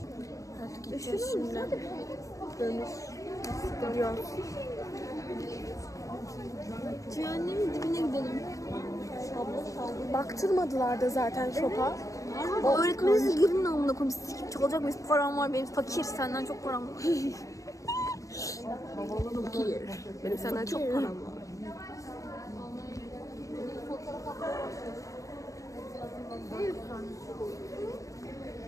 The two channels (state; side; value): late; right; 0.16 ms